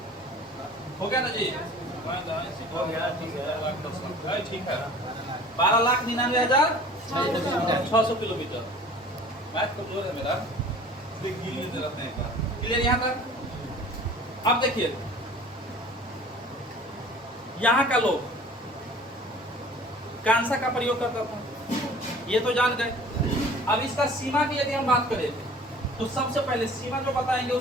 हो गया ना जी, हो गया, ठीक है, ठीक है। 12,99,600 किलोमीटर। मैथ कमजोर है मेरा, रहते हैं। क्लियर यहाँ तक। अब देखिए यहाँ का लोग कांसा का प्रयोग करता था, ये तो जान गए। अब इसका सीमा की यदि हम बात करें तो सबसे पहले सीमा जो बताएंगे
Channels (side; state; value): both; normal; correlation 0.46